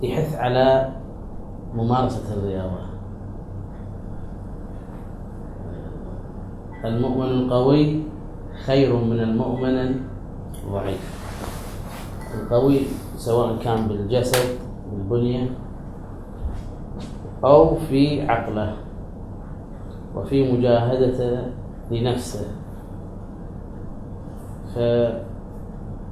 يحث على ممارسة الرياضة. المؤمن القوي خير من المؤمن الضعيف. القوي سواء كان بالجسد بالبنية أو في عقله وفي مجاهدته لنفسه. فجهاد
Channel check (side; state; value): both; identical; correlation 1.00